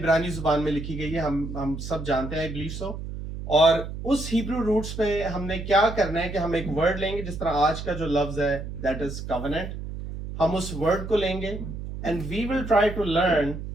زبان میں لکھی گئی ہے, ہم سب جانتے ہیں, آئی بلیو سو. اور اس ہیبرو روٹس پہ ہم نے کیا کرنا ہے کہ ہم ایک ورڈ لیں گے, جس طرح آج کا جو لفظ ہے دیٹ از covenant. ہم اس ورڈ کو لیں گے and we will try to learn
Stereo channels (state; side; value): noise; right; hum, 8 dB below the sound